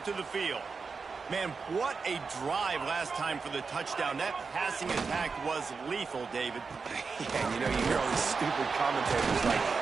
the field. Man, what a drive last time for the touchdown. That passing attack was lethal, David. Yeah, you know, you hear all these stupid commentators like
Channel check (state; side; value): quieter; left; 4.9 dB